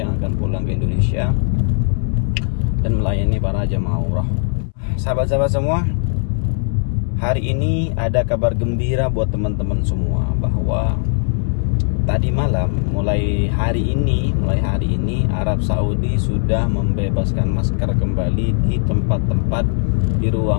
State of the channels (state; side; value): silent; right; 67 dB below the other